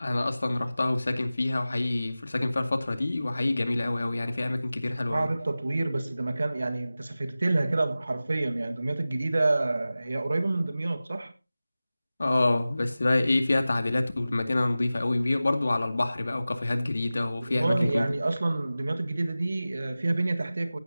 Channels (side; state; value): both; inverted; correlation -0.96